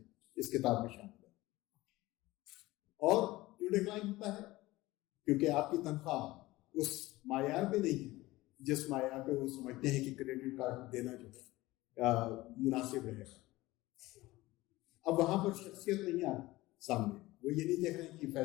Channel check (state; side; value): quieter; right; 18.8 dB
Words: اس کتاب میں شامل ہے. اور کیوں ڈکلائن ہوتا ہے؟ کیونکہ آپ کی تنخواہ اس معیار پہ نہیں ہے جس معیار پہ وہ سمجھتے ہیں کہ کریڈٹ کارڈ دینا جو ہے مناسب رہے گا. اب وہاں پر شخصیت نہیں آ رہی سامنے. وہ یہ نہیں دیکھ رہے ہیں کہ